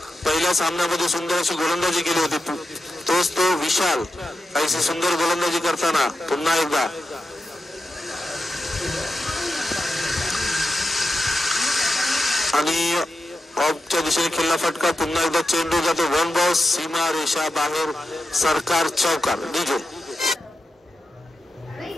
पहिल्या सामन्यामध्ये सुंदर अशी गोलंदाजी केली होती, तोच तो विशाल काहीशी सुंदर गोलंदाजी करताना पुन्हा एकदा आणि ऑफच्या दिशेने खेळला फटका. पुन्हा एकदा चेंडू जातो वन बॉल, सीमा रेषा बाहेर, सरकार चौकार. डीजे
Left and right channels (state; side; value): normal; both; correlation 0.90